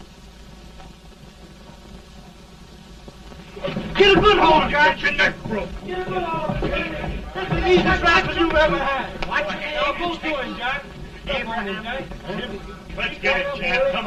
Get a good hold, Jack. Get your neck broke. Get a good hold. That's the easiest rifle you've ever had. Watch it. Now, both doing, Jack. Up on him, Jack. Let's get it, Jack. Come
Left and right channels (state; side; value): identical; both; correlation 1.00